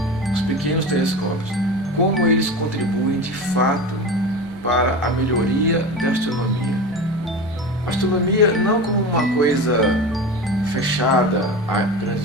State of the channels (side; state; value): both; normal; correlation 0.28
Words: os pequenos telescópios, como eles contribuem de fato para a melhoria da astronomia. A astronomia não como uma coisa fechada a